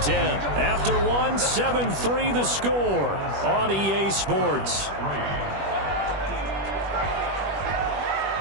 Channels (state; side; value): late; left; 21 ms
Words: 10. After one, 7-3 the score on EA Sports.